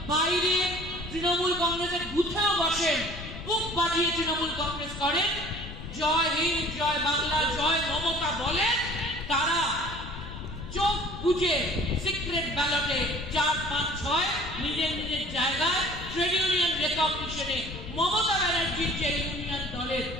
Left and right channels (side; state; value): left; noise; rumble, 11 dB below the sound